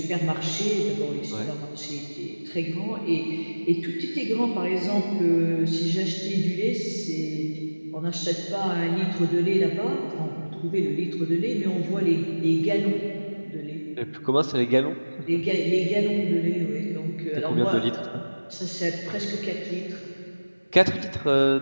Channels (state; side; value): inverted; both; correlation -1.00